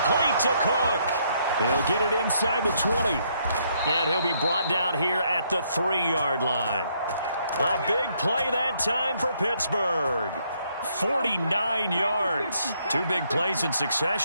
to Cook. He'll get it inside the 20. And he'll be brought down here at the 3-yard line. A big play that time for Pittsburgh. 49 yards. 2 big plays in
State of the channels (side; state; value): both; inverted; correlation -0.72